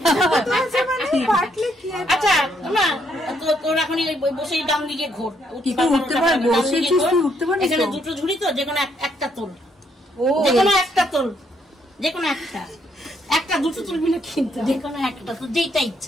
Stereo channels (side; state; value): both; normal; correlation 0.72